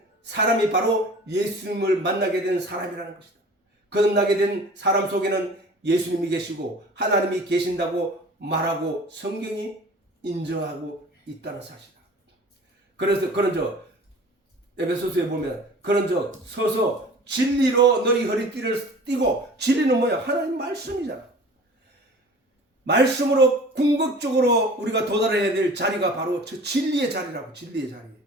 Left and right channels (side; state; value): both; normal; correlation 0.43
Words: 사람이 바로 예수님을 만나게 된 사람이라는 것이다. 거듭나게 된 사람 속에는 예수님이 계시고 하나님이 계신다고 말하고 성경이 인정하고 있다는 사실이다. 그래서 그런저 에베소서에 보면 그런즉 서서 진리로 너희 허리띠를 띠고, 진리는 뭐야? 하나님 말씀이잖아. 말씀으로 궁극적으로 우리가 도달해야 될 자리가 바로 저 진리의 자리라고. 진리의 자리.